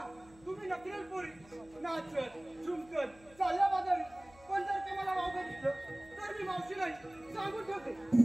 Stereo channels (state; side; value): noise; left; hum, 25 dB below the sound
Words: तुम्ही नकल पोरी नाचत झुमकत चालल्या बाजारी. पण जर ते मला वावगं दिसलं तर मी मावशी नाही सांगून ठेवते.